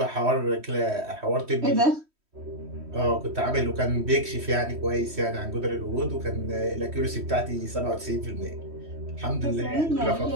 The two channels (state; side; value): late; left; 3.1 ms